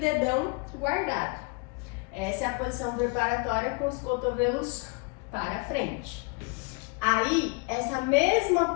guardado. Essa é a posição preparatória com os cotovelos para frente. Aí, essa mesma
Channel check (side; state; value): right; quieter; 31.2 dB